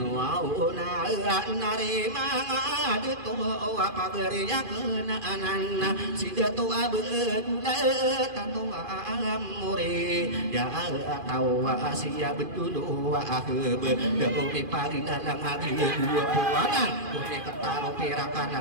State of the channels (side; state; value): left; late; 2.4 ms